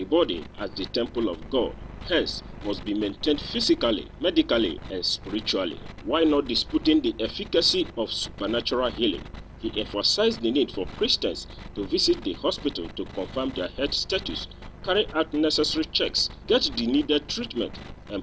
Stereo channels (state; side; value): identical; both; correlation 1.00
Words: body as the temple of God, hence must be maintained physically, medically, and spiritually. While not disputing the efficacy of supernatural healing, he emphasized the need for Christians to visit the hospital to confirm their health status carry out necessary checks, get the needed treatment, and